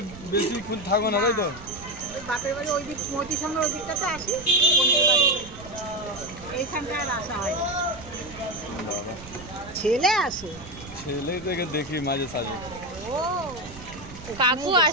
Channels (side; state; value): right; noise; rumble, 16 dB below the sound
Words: বেশিক্ষণ থাকবো না তাই তো? বাপের বাড়ি ওই দিক মতির সঙ্গে ওই দিকটাতে আসি, বোনের বাড়ি এইখানটায় আর আসা হয় না। ছেলে আসে, ছেলে থেকে দেখি মাঝে সাঝে। ও কাকু